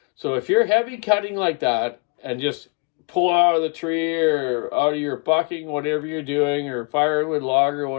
So if you're heavy cutting like that and just pull out of the tree or out of your bucking, whatever you're doing, or firewood log or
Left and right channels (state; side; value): quieter; right; 32.7 dB